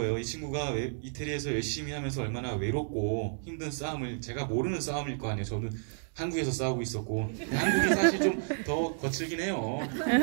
이 친구가 이태리에서 열심히 하면서 얼마나 외롭고 힘든 싸움을 제가 모르는 싸움일 거 아니에요. 저는 한국에서 싸우고 있었고 한국이 사실 좀 더 거칠긴 해요.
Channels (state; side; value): silent; left; digital silence